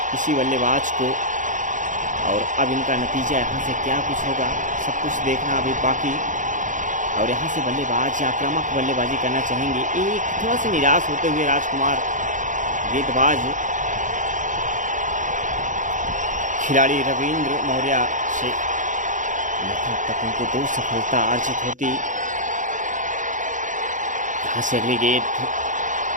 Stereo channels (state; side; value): late; left; 0.37 ms